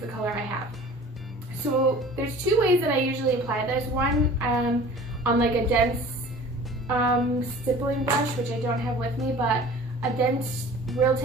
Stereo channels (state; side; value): normal; both; correlation 0.44